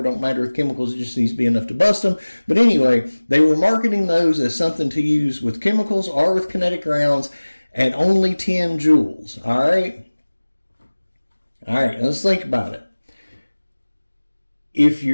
don't matter with chemicals. It just needs to be enough to bust them. But anyway, they were marketing those as something to use with chemicals or with kinetic rounds at only 10 joules. All right? All right, let's think about it. If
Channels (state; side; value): inverted; both; correlation -1.00